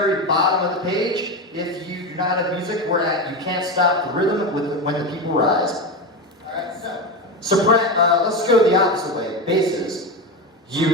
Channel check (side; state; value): both; normal; correlation 0.18